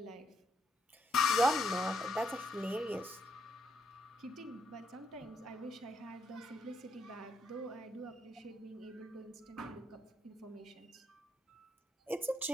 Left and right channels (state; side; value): normal; both; correlation 0.76